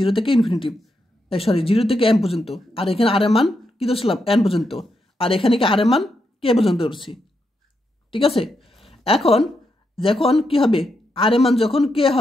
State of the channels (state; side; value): normal; both; correlation 0.83